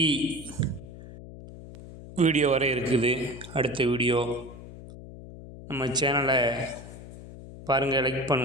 வீடியோ வரை இருக்குது. அடுத்த வீடியோ நம்ம சேனலை பாருங்கள், லைக்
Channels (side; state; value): left; noise; hum, 15 dB below the sound